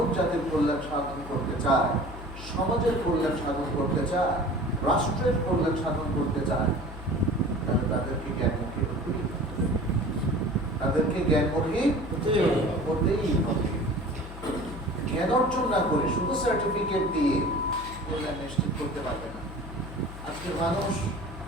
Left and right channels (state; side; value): noise; left; hum, 12 dB below the sound